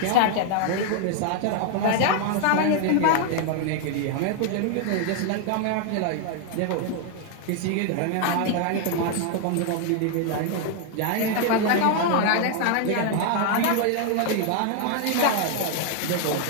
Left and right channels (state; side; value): different; both; correlation 0.00